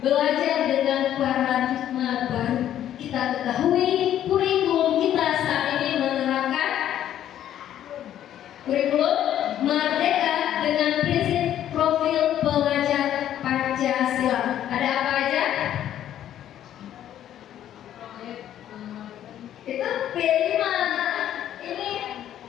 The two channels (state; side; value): quieter; right; 11.2 dB